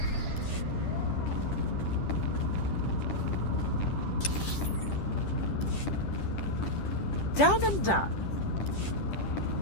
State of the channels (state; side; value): late; right; 10 ms